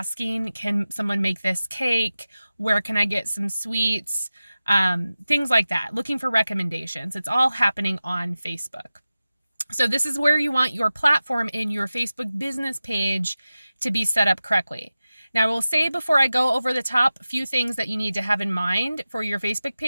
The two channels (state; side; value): inverted; both; correlation -0.95